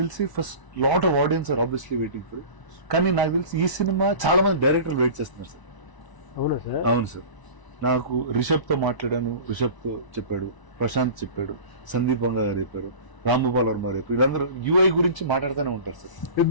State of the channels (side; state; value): right; late; 1.0 ms